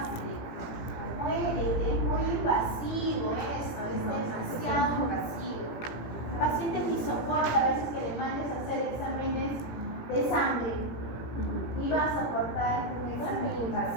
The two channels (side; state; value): right; late; 18 ms